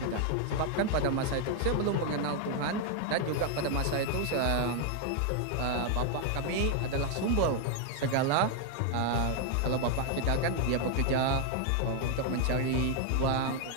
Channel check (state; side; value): different; both; correlation 0.00